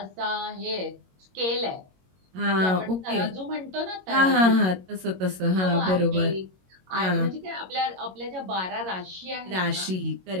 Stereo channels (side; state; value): left; late; 22 ms